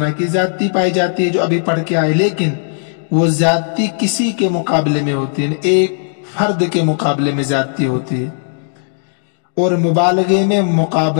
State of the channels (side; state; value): right; silent; digital silence